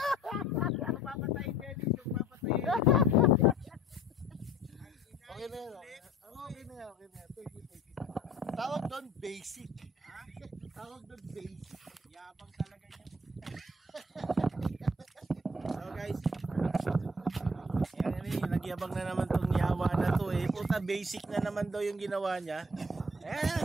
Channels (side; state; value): both; normal; correlation 0.55